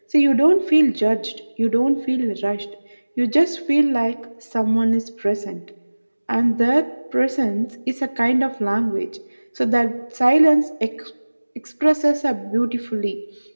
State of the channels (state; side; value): inverted; both; correlation -1.00